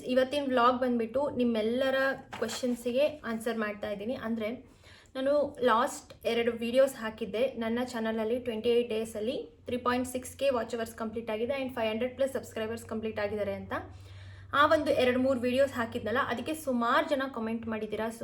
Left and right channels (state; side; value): identical; both; correlation 1.00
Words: ಇವತ್ತಿನ ವ್ಲಾಗ್ ಬಂದುಬಿಟ್ಟು ನಿಮ್ಮೆಲ್ಲರ ಕ್ವೆಶನ್ಸಿಗೆ ಆನ್ಸರ್ ಮಾಡ್ತಾ ಇದ್ದೀನಿ. ಅಂದರೆ ನಾನು ಲಾಸ್ಟ್ 2 ವೀಡಿಯೋಸ್ ಹಾಕಿದ್ದೆ ನನ್ನ ಚಾನಲಲ್ಲಿ. 28 ಡೇಸಲ್ಲಿ 3.6K ವಾಚ್ ಅವರ್ಸ್ ಕಂಪ್ಲೀಟ್ ಆಗಿದೆ ಆ್ಯಂಡ್ 500+ ಸಬ್ಸ್ಕ್ರೈಬರ್ಸ್ ಕಂಪ್ಲೀಟ್ ಆಗಿದ್ದಾರೆ ಅಂತ. ಆ ಒಂದು 2-3 ವೀಡಿಯೋಸ್ ಹಾಕಿದ್ನಲ್ಲ, ಅದಕ್ಕೆ ಸುಮಾರು ಜನ ಕಮೆಂಟ್ ಮಾಡಿದ್ದೀರಾ,